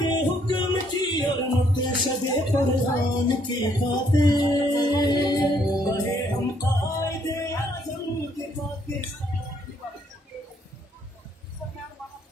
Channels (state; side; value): normal; both; correlation 0.69